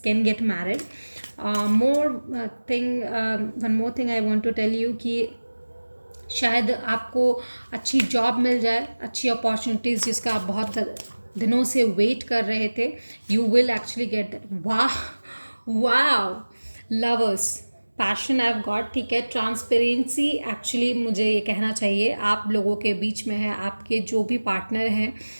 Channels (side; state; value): both; inverted; correlation -1.00